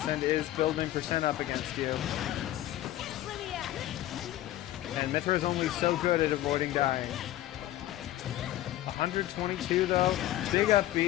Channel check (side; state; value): right; quieter; 14.4 dB